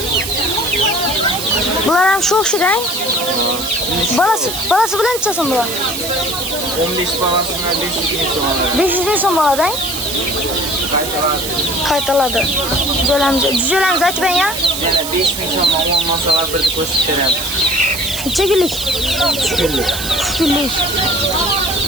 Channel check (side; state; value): right; noise; hiss, 6 dB below the sound